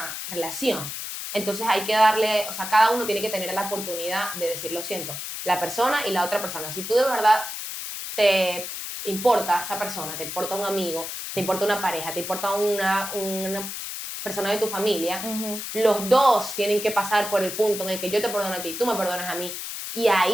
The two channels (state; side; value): noise; left; hiss, 7 dB below the sound